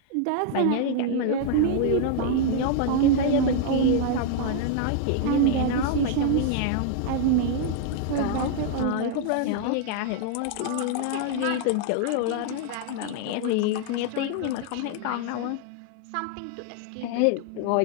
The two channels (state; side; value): different; both; correlation 0.00